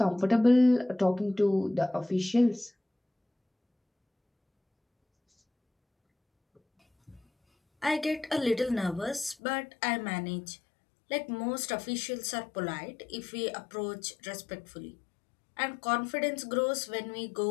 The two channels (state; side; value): drops out; right; at 9.3 s